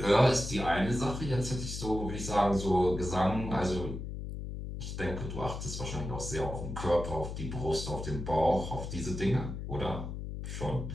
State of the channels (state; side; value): noise; left; hum, 6 dB below the sound